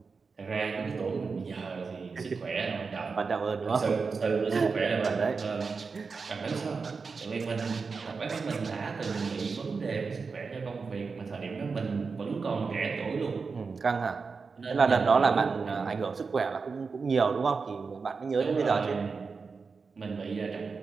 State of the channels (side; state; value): left; quieter; 4.8 dB